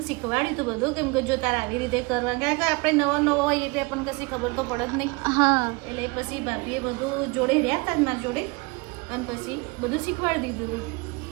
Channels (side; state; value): left; quieter; 27.3 dB